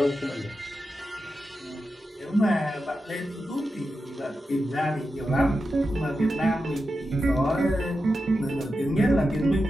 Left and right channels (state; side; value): normal; both; correlation 0.90